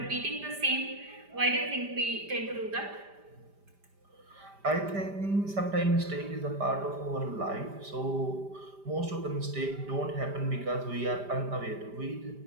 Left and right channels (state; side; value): late; left; 5.0 ms